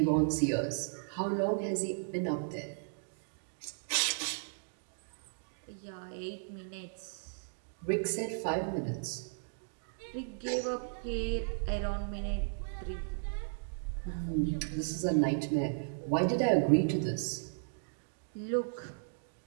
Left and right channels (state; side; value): silent; left; digital silence